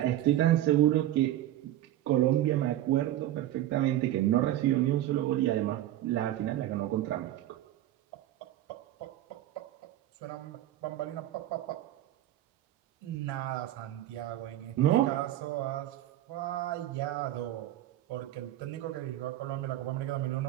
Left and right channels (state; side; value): quieter; left; 13.6 dB